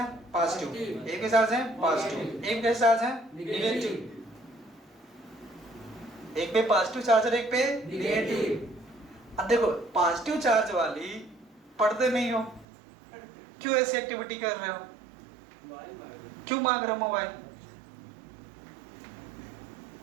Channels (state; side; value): drops out; left; at 12.7 s